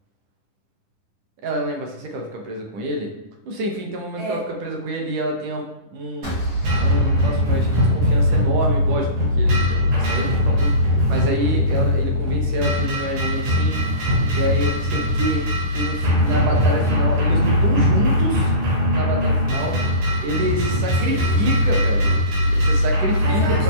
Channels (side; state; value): left; late; 10 ms